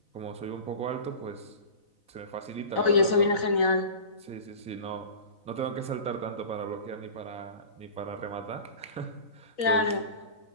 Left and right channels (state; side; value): late; right; 4.0 ms